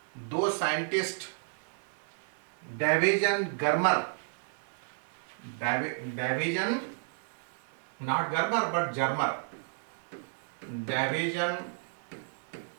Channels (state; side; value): silent; left; 56 dB below the other